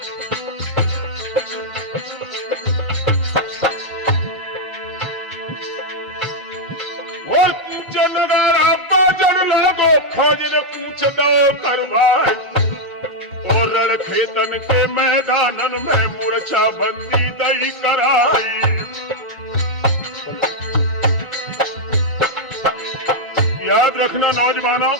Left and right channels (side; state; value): both; normal; correlation -0.02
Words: और कूच नगारा बाजन लागो फौज ने कूच दो करवाए। और रण खेतन के मैदानन में मूर्छा बंदी दई कराई। याद रखना नौजवानों,